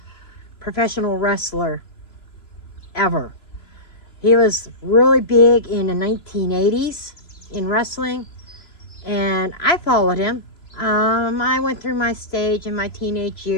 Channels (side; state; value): right; late; 2.9 ms